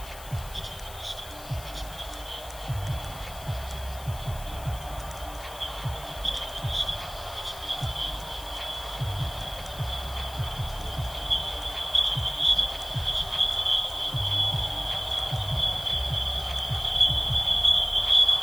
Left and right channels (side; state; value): left; noise; hiss, 16 dB below the sound